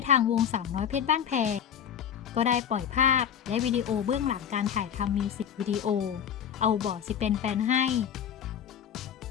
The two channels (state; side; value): quieter; right; 8.8 dB